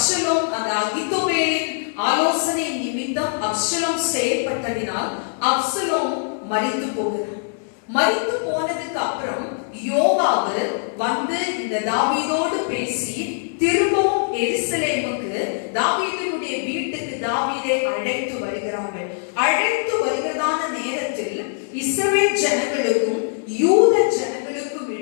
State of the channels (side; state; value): right; silent; digital silence